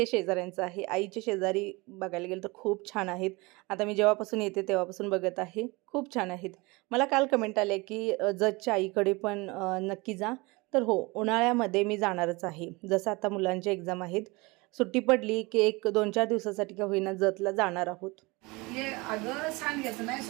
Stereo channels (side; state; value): left; quieter; 24.7 dB